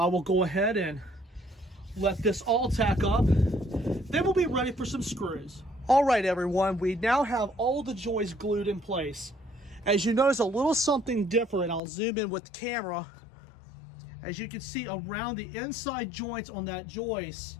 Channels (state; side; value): drops out; right; at 11.8 s